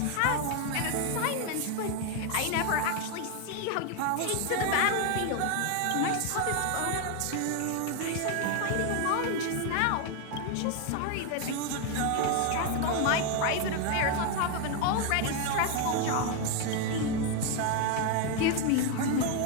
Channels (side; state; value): both; different; correlation 0.01